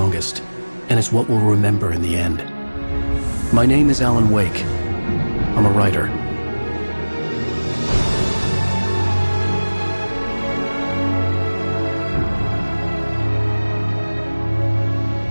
and it's what we'll remember in the end. My name is Alan Wake. I'm a writer.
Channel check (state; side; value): inverted; both; correlation -1.00